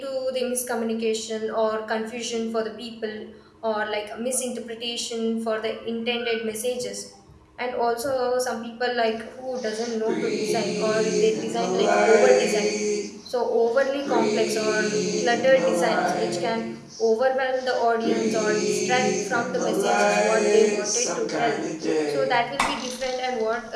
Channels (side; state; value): both; identical; correlation 1.00